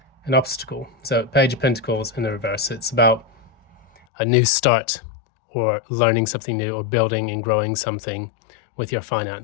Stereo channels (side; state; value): right; drops out; at 4.0 s